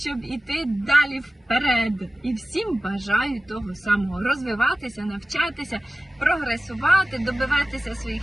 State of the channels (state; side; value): normal; both; correlation 0.96